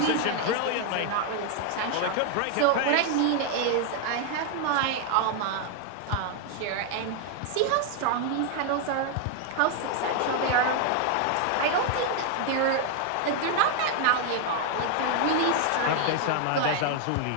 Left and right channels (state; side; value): different; both; correlation 0.00